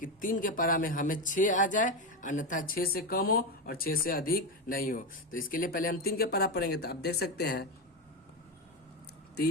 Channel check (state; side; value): normal; both; correlation 0.13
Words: 3 के पारा में हमें 6 आ जाए, अन्यथा 6 से कम हो और 6 से अधिक नहीं हो। तो इसके लिए पहले हम 3 के पारा पढ़ेंगे। तो आप देख सकते हैं